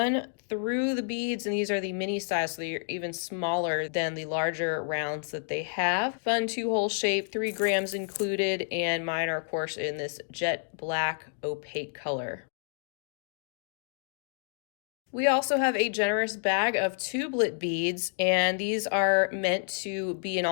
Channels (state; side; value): silent; right; digital silence